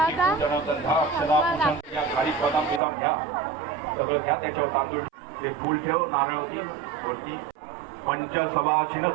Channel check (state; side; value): drops out; left; at 2.8 s